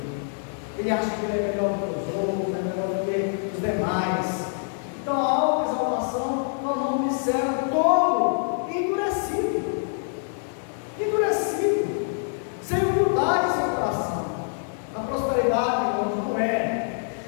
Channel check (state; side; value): silent; right; 55 dB below the other